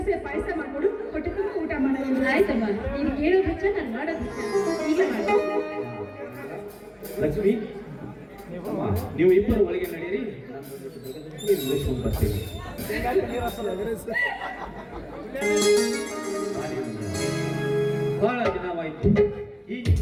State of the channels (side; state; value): both; identical; correlation 1.00